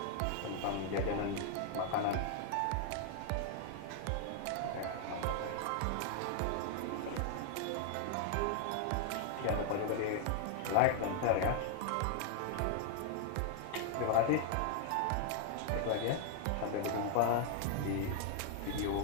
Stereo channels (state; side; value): different; both; correlation 0.00